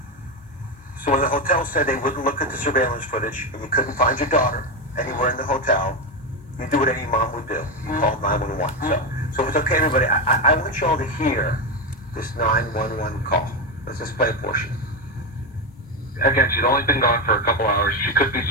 So when the hotel said they wouldn't look at the surveillance footage and you couldn't find your daughter anywhere in the hotel, you do what any mom would do. You call 911. So if it's okay, everybody, I want you all to hear this 911 call. Let's just play a portion. Again, she's only been gone for a couple hours. She could be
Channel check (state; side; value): normal; both; correlation 0.12